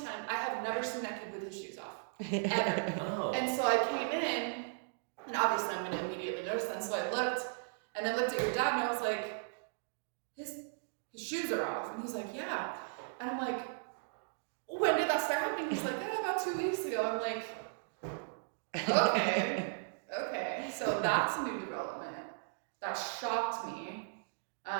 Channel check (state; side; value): silent; left; digital silence